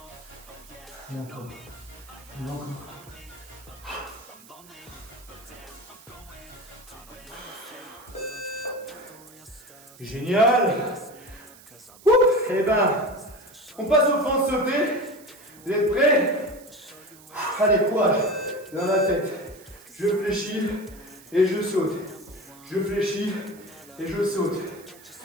Et encore. Et encore. Génial. Et ben, on passe aux fentes sautées. Vous êtes prêts? Allez, courage. Dans la tête. Je fléchis et je saute. Je fléchis et je saute.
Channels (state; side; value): noise; right; hiss, 22 dB below the sound